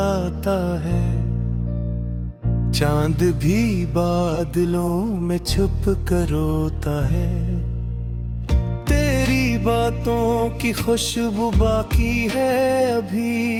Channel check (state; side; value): identical; both; correlation 1.00